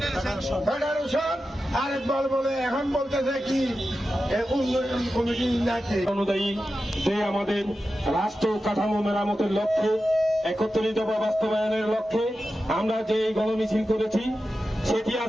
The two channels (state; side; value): normal; both; correlation 0.92